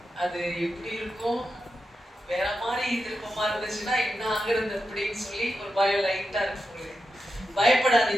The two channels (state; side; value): normal; both; correlation 0.88